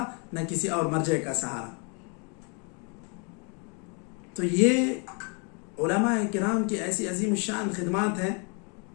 نہ کسی اور مرجع کا سہارا. تو یہ علماء کرام کی ایسی عظیم الشان خدمات ہیں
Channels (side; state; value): right; quieter; 35.9 dB